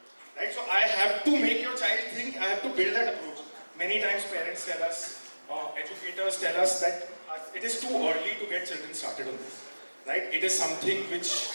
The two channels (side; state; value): both; inverted; correlation -1.00